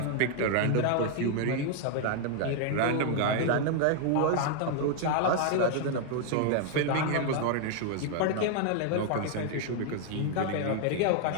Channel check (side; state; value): both; different; correlation 0.00